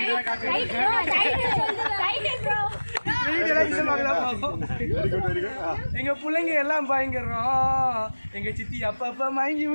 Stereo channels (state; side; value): inverted; both; correlation -1.00